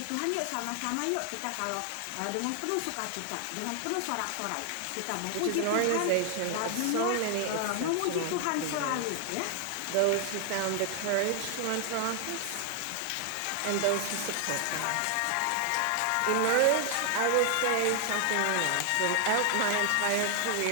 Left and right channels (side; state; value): both; different; correlation 0.00